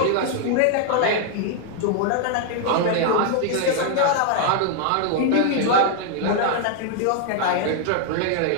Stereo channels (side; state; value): both; different; correlation 0.00